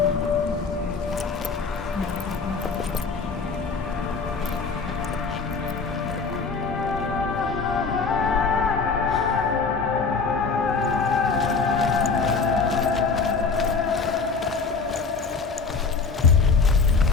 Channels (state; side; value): quieter; right; 4.7 dB